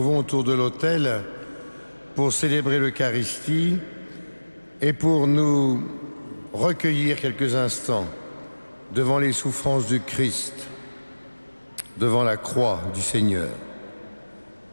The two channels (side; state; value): both; inverted; correlation -1.00